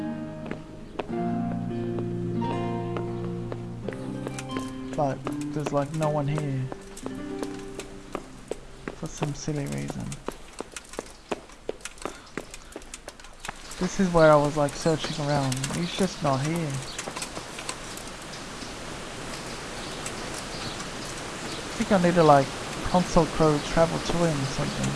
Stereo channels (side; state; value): both; identical; correlation 1.00